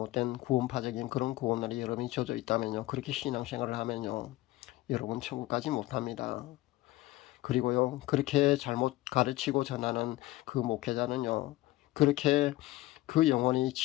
구원파적인 그런 구원론이 여러분이 젖어 있다면요. 그렇게 신앙생활을 하면요. 여러분 천국 가지 못합니다. 그리고요. 그렇게 잘못 가르치고 전하는 그 목회자는요. 그렇게 그 영혼이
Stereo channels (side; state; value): right; quieter; 17.8 dB